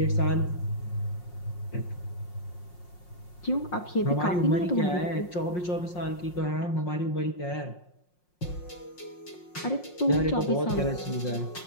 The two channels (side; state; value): right; late; 5.6 ms